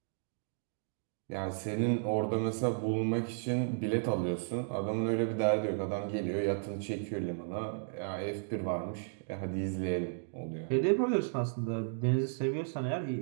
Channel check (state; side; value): silent; left; digital silence